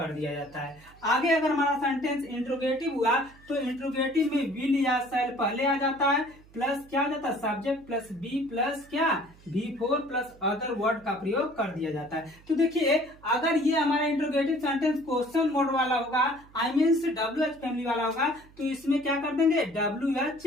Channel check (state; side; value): noise; right; hum, 25 dB below the sound